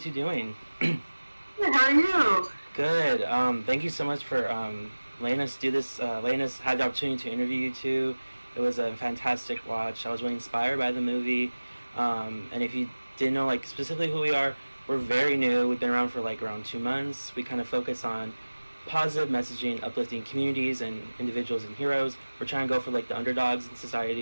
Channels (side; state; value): both; inverted; correlation -1.00